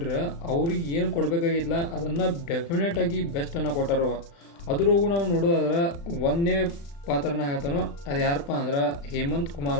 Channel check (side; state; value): right; late; 35 ms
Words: ಅವ್ರಿಗೆ ಏನು ಕೊಡಬೇಕಾಗಿತ್ತಲ್ಲ ಅದನ್ನು ಡೆಫಿನೆಟಾಗಿ ಬೆಸ್ಟನ್ನು ಕೊಟ್ಟಾರ. ಅದ್ರಾಗೂ ನಾವು ನೋಡೋದಾದ್ರೆ ಒಂದೇ ಪಾತ್ರನ ಹೇಳ್ತಾನೋ ಅದು ಯಾರಪ್ಪ ಅಂದ್ರೆ ಹೇಮಂತ್